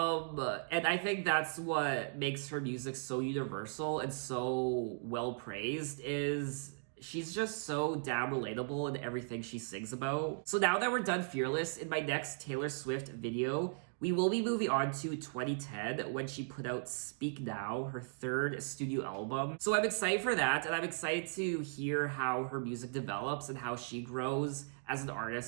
I think that's what makes her music so universal and so well praised, is she's just so damn relatable in everything she sings about. So now that we're done Fearless, in my next Taylor Swift video, we will be moving on to 2010 when she put out Speak Now, her third studio album. So I'm excited for that, and I'm excited to hear how her music develops and how she grows as an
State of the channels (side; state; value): left; silent; digital silence